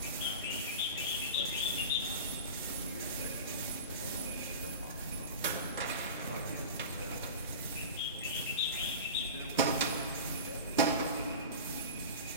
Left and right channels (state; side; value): inverted; both; correlation -0.31